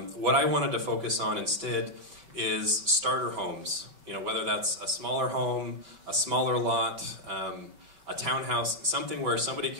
I wanted to focus on instead is starter homes. You know, whether that's a smaller home, a smaller lot, a townhouse, something where somebody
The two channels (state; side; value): late; left; 5.2 ms